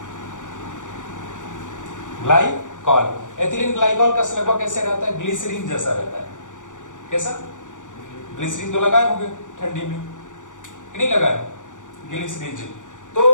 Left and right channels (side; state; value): right; late; 0.87 ms